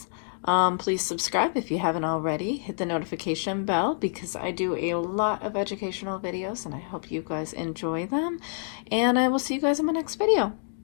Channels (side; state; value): right; silent; 60 dB below the other